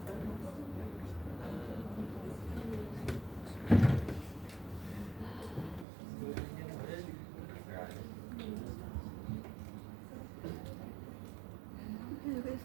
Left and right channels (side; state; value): left; drops out; at 5.9 s